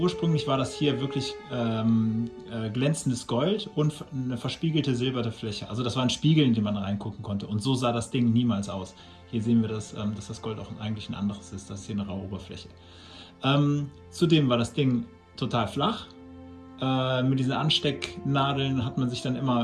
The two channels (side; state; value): both; identical; correlation 1.00